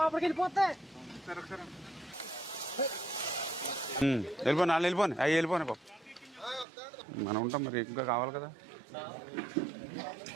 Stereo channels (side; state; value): left; drops out; at 6.7 s